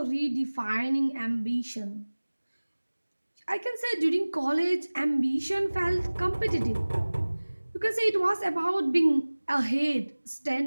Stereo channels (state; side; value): inverted; both; correlation -1.00